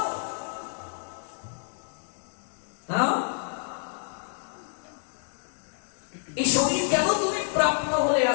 এই শরীর কেন তুমি প্রাপ্ত হলে?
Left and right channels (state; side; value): silent; right; 59 dB below the other